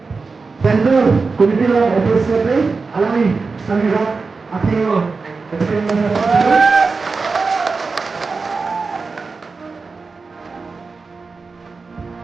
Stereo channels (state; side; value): quieter; left; 4.4 dB